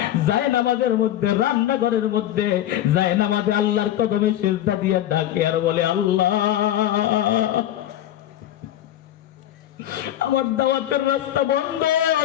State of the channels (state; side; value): quieter; right; 12.3 dB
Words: যায় নামাজের মধ্যে, রান্নাঘরের মধ্যে যায় নামাজে আল্লাহর কদমে সিজদা দিয়ে ডাকে আর বলে, আল্লাহ আমার দাওয়াতের রাস্তা বন্ধ,